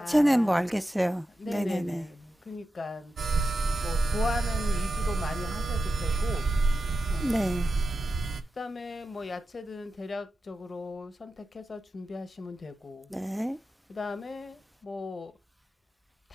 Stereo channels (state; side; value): normal; both; correlation 0.91